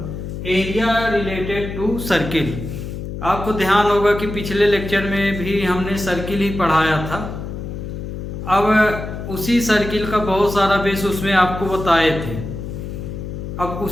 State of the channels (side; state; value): left; noise; hum, 7 dB below the sound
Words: area related to circle. आपको ध्यान होगा कि पिछले लेक्चर में भी हमने सर्किल ही पढ़ाया था। अब उसी सर्किल का बहुत सारा बेस उसमें आपको बताए थे। अब